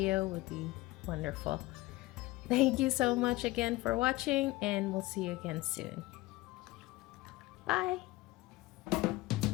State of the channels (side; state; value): right; quieter; 19.5 dB